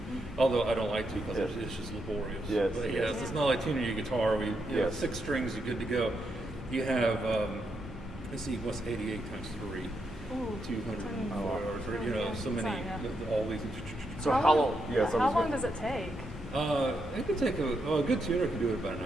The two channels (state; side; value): normal; both; correlation 0.81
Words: Although I don't like to because it's just laborious. Yes. But yes, it's not like tuning your guitar where you have 6 strings, you're good to go. You have, let's see, what's 88 times 3? 204, or so many, all these. So how long? Yeah. How long does it take? It could take a good tuner can do it about an